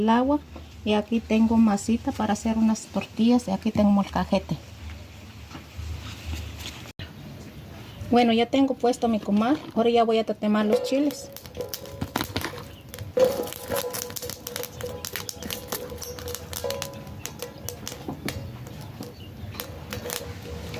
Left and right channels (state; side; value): identical; both; correlation 1.00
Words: agua. Y aquí tengo masita para hacer unas tortillas y aquí tengo molcajete. Bueno, ya tengo puesto mi comal. Ahora ya voy a tatemar los chiles.